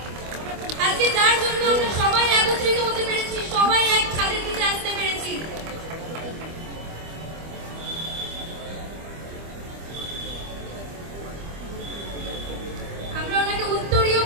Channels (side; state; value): left; late; 25 ms